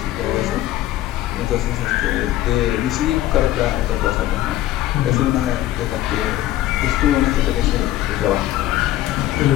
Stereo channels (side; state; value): right; quieter; 14.3 dB